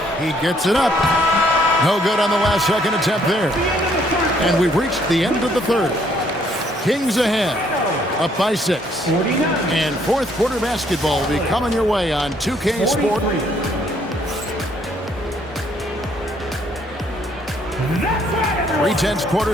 He gets it up. No good on the last second attempt there. And we've reached the end of the 3rd. Kings ahead, up by 6. And 4th quarter basketball will be coming your way on 2K Sport. 3/10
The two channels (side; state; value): both; normal; correlation 0.66